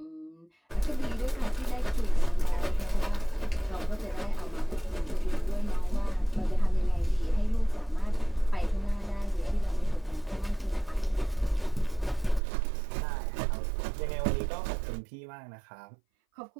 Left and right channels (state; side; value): drops out; left; at 12.4 s